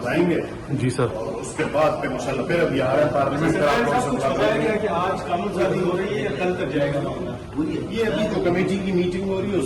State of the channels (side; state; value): both; identical; correlation 1.00